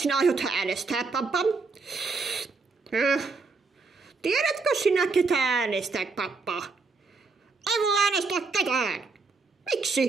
aiot äänestää, pappa? Tiedätkö sinä, ketä äänestää, pappa? Ei voi äänestää ketään.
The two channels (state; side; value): quieter; left; 4.3 dB